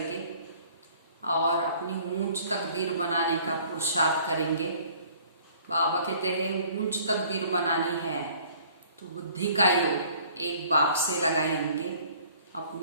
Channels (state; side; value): inverted; both; correlation -0.55